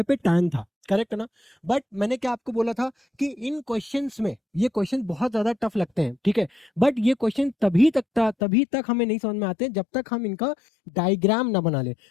पे टैन था। करेक्ट ना? बट मैंने क्या आपको बोला था कि इन क्वेश्चंस में ये क्वेश्चन बहुत ज्यादा टफ लगते हैं, ठीक है, बट ये क्वेश्चन तभी तक हमें नहीं समझ में आते जब तक हम इनका डायग्राम ना बना ले।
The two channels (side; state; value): right; drops out; at 8.3 s